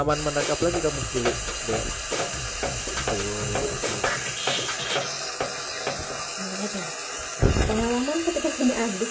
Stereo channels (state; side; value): identical; both; correlation 1.00